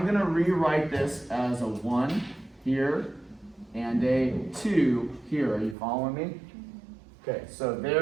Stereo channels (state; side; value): drops out; left; at 5.8 s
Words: going to rewrite this as a 1 here and a 2 here. Are you following me? Okay, so